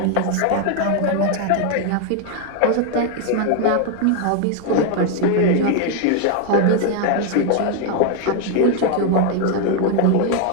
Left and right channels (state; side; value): different; both; correlation 0.01